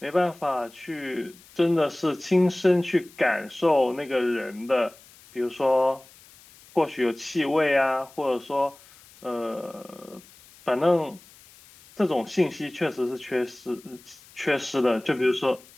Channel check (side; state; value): left; noise; hiss, 24 dB below the sound